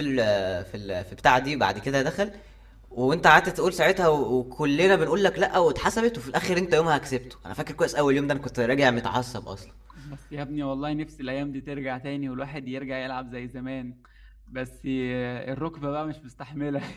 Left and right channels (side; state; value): both; identical; correlation 1.00